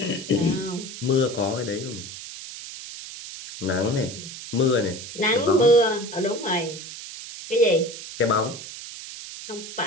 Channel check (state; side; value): noise; right; hiss, 11 dB below the sound